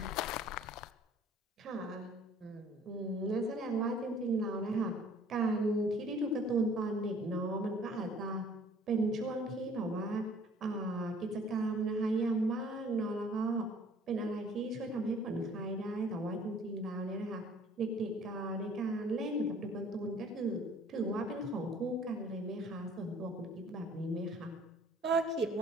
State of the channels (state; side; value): normal; both; correlation 0.54